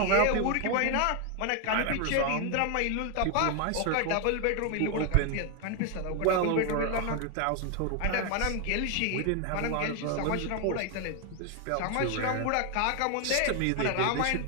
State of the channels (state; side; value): different; both; correlation 0.01